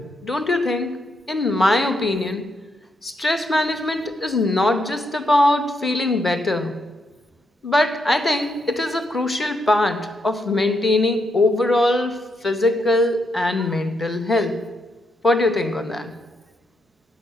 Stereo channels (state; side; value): normal; both; correlation 0.80